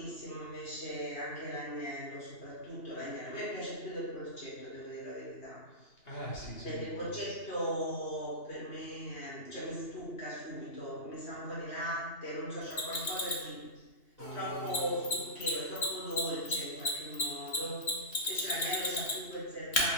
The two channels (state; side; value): late; right; 3.1 ms